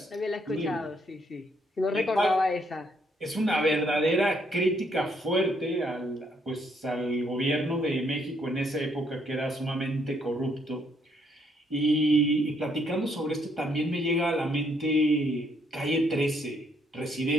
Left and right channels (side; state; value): both; normal; correlation 0.71